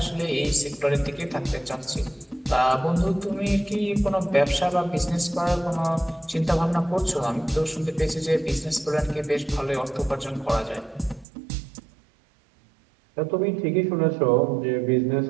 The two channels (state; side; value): drops out; left; at 11.2 s